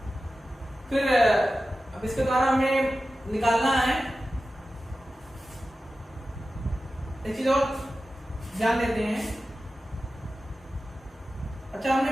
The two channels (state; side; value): normal; both; correlation 0.94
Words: फिर अब इसके द्वारा हमें निकालना है एक चीज और ध्यान देते हैं। अच्छा, हमने